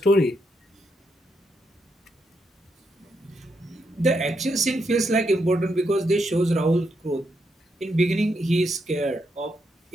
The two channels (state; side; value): normal; both; correlation 0.80